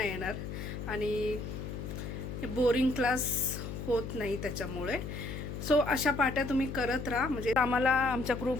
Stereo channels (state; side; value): noise; left; hum, 7 dB below the sound